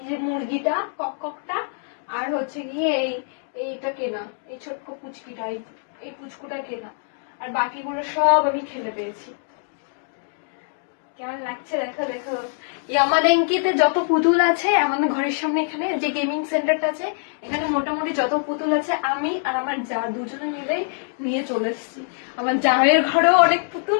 যে মুরগিটা ককটা, আর হচ্ছে গিয়ে এইটা কেনা, এই ছোট্ট পুচকিটা, এই পুচকুটা কেনা, আর বাকিগুলো সব আমি খেলে পেয়েছি। কেমন লাগছে দেখো দেখো। ইয়ামাদেঙ্কিতে যত পুতুল আছে আমাদের ঘরের সামনে, এখানে যে গেমিং সেন্টারটা আছে, এখানে মোটামুটি যত পুতুল আছে আমি আর আমার যা দুজনে মিলে নিয়ে চলে এসেছি। আমার জায়ের ঘরেও অনেক পুতুল,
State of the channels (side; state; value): right; silent; digital silence